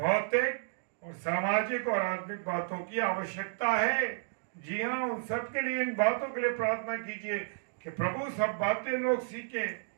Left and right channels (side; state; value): left; silent; digital silence